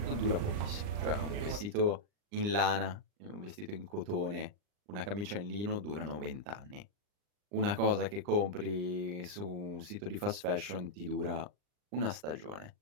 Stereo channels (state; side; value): late; left; 39 ms